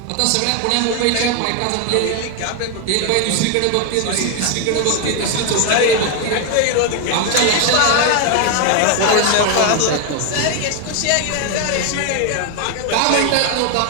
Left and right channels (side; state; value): both; different; correlation 0.01